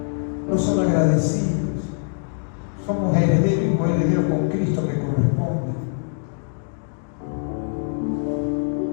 No son agradecidos. Somos herederos y coherederos con Cristo que corresponde.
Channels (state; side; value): silent; right; 63 dB below the other